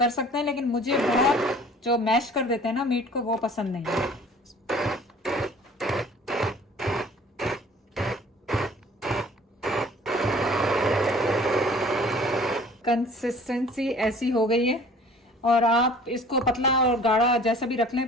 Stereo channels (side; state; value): both; normal; correlation 0.49